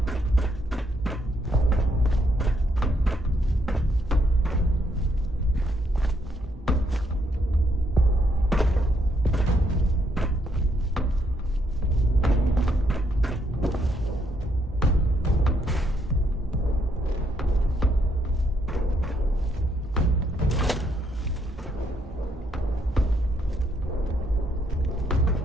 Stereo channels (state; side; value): normal; both; correlation 0.73